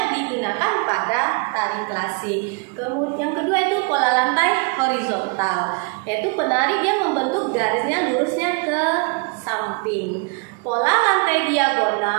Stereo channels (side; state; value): left; quieter; 33.8 dB